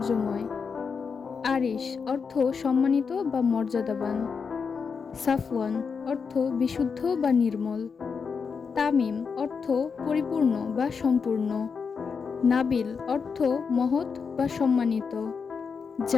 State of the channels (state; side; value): quieter; right; 5.7 dB